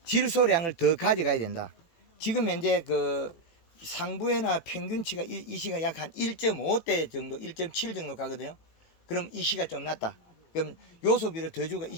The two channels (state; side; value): late; right; 18 ms